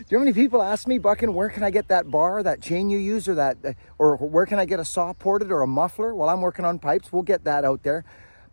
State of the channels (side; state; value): both; inverted; correlation -1.00